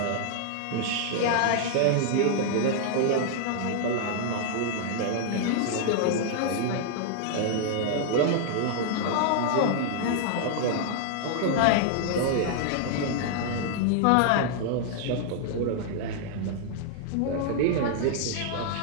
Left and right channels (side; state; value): both; different; correlation -0.01